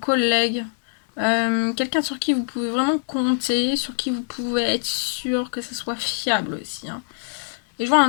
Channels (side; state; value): right; silent; digital silence